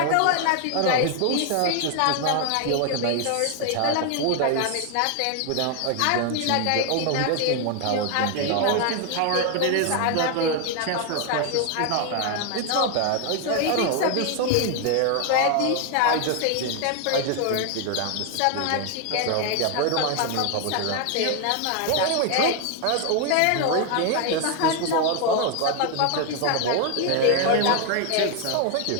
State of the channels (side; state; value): both; different; correlation 0.01